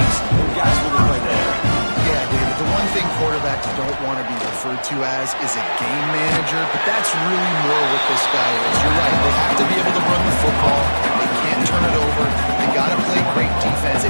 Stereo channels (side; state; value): both; inverted; correlation -1.00